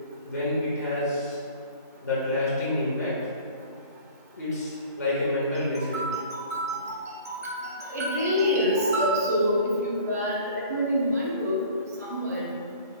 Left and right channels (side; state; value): both; inverted; correlation -0.45